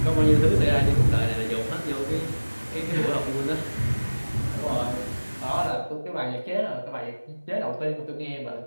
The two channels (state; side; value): inverted; both; correlation -1.00